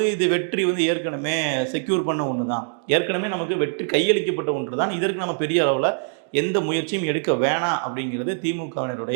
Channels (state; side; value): silent; left; 60 dB below the other